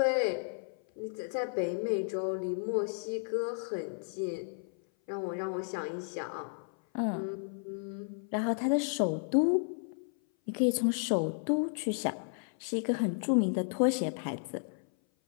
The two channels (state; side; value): silent; right; 56 dB below the other